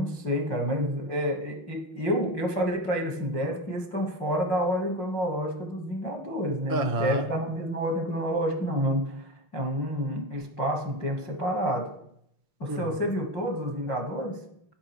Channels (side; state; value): right; late; 5.6 ms